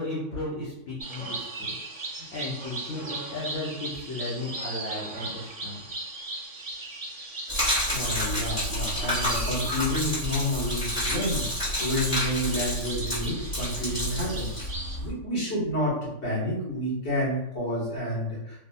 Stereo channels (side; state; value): right; late; 3.5 ms